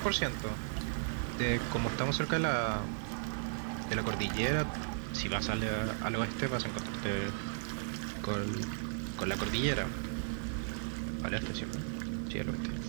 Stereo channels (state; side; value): silent; left; 54 dB below the other